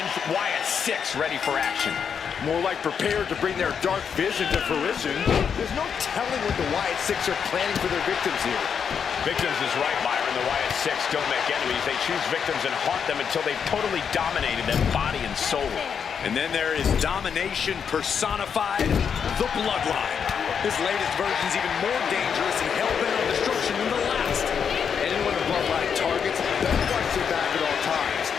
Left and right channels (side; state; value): right; quieter; 7.1 dB